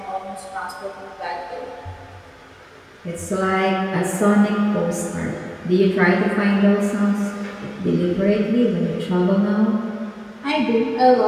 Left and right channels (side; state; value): both; identical; correlation 1.00